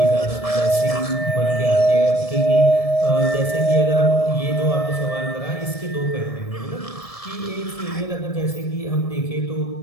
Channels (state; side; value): late; right; 1.7 ms